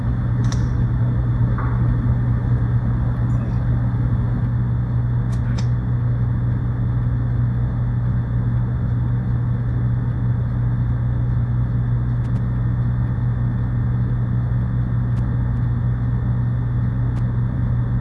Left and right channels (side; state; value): both; identical; correlation 1.00